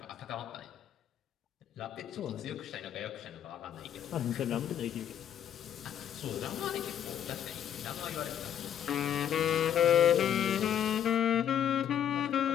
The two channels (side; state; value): right; quieter; 9.7 dB